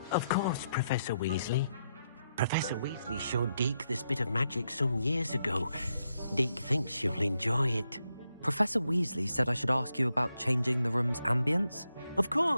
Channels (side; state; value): both; inverted; correlation -0.82